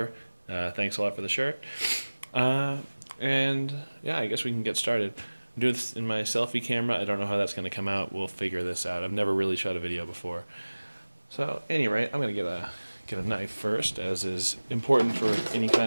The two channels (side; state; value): both; inverted; correlation -1.00